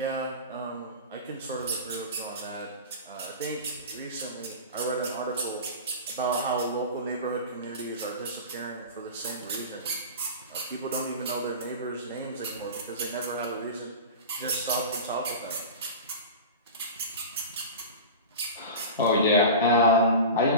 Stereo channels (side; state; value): both; inverted; correlation -0.30